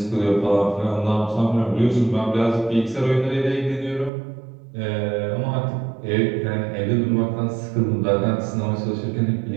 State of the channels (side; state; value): left; drops out; at 4.1 s